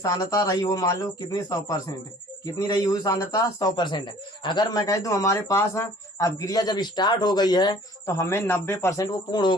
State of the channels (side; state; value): both; normal; correlation 0.52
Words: रही हो, मान लो कितनी, 100%। कितनी रही हुई सांद्रता, 100%। अगर मैं कह दूं हमारे पास अपक्रिया जब स्टार्ट हो गई है तो हमें 90% वो पूर्ण हो